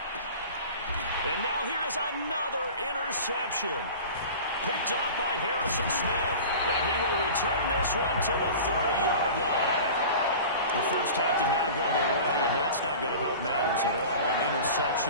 And now here is another interception. Picked off by Harrison Smith. And he will return this one to the 30-yard line. The first half did not go their way, and that's not going to help matters at all. An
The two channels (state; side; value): inverted; both; correlation -0.37